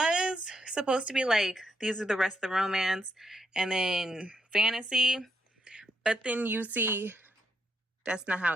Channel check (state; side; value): normal; both; correlation 0.78